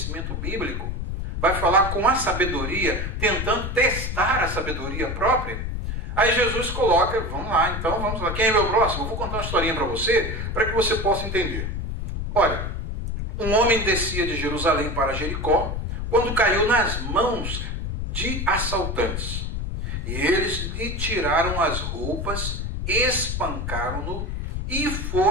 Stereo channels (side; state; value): left; noise; rumble, 4 dB below the sound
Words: bíblico. Vai falar com a sabedoria, tentando testar a sabedoria própria. Aí Jesus coloca, vamos lá, quem é meu próximo? Eu vou contar uma historinha para você possa entender. Olha, um homem descia de Jerusalém para Jericó, quando caiu nas mãos de assaltantes. E eles lhe tiraram as roupas, espancaram-no e